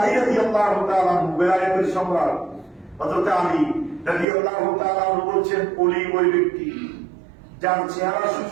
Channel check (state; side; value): drops out; left; at 4.2 s